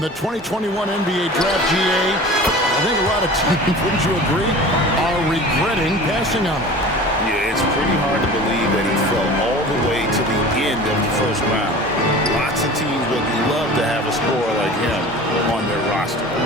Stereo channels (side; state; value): both; normal; correlation 0.39